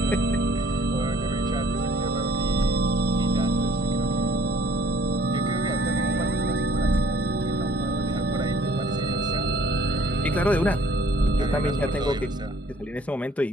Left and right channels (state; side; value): normal; both; correlation 0.58